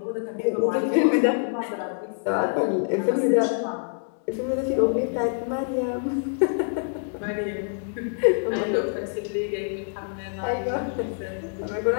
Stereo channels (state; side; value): silent; right; digital silence